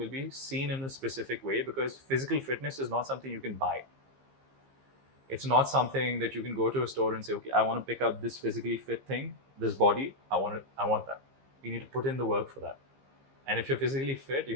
be seen in a specific way because physical fitness is not something you can buy. It's not something that you can go to a store and say, okay, I want to pick out this physically fit thing, this body, I want that. You need to put in the work for that. And if you're physically fit,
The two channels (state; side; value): late; left; 15 ms